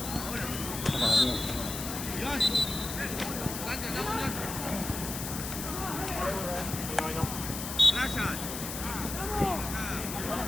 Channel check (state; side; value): noise; left; hiss, 6 dB below the sound